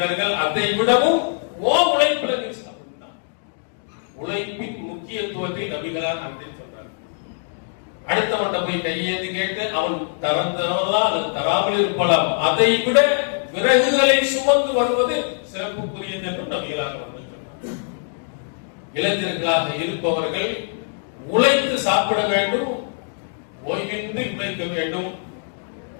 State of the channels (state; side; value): silent; right; digital silence